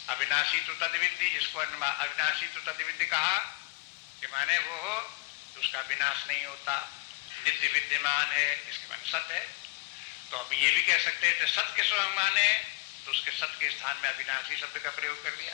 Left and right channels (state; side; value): quieter; right; 24.2 dB